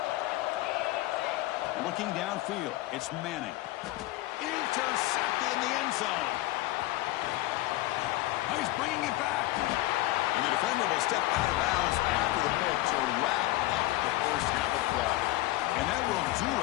Looking downfield, it's Manning. Intercepted in the end zone. defender will step out of bounds after the pick to wrap up the first half of play. And that will do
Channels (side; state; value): right; quieter; 17.5 dB